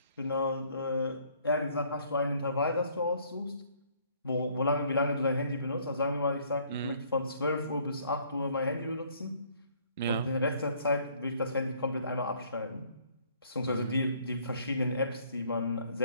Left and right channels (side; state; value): both; inverted; correlation -0.62